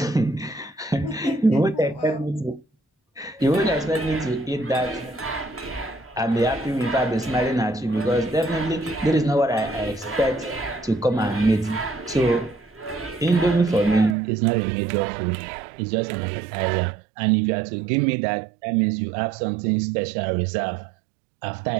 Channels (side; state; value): left; drops out; at 14.2 s